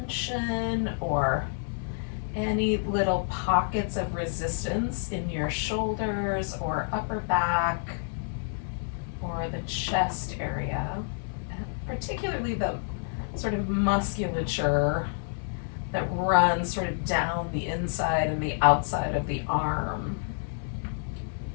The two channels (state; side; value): silent; right; 59 dB below the other